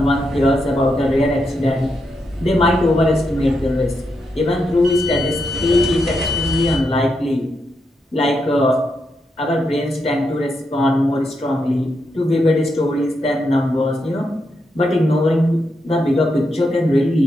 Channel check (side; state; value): both; normal; correlation 0.83